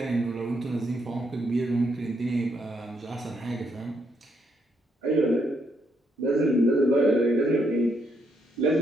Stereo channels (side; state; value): both; normal; correlation 0.75